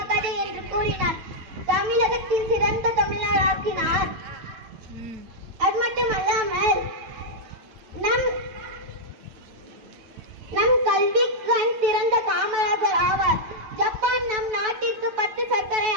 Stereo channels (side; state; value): left; late; 9.0 ms